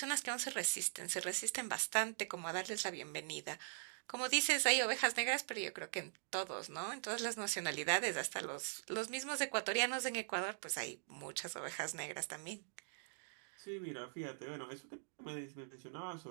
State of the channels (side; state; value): left; silent; digital silence